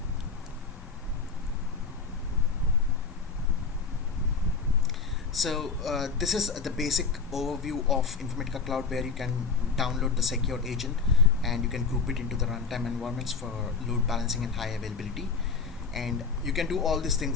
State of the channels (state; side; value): quieter; right; 5.0 dB